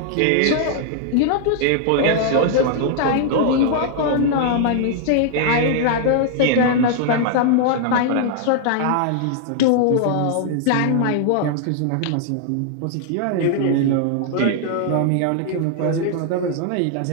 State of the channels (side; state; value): both; different; correlation 0.00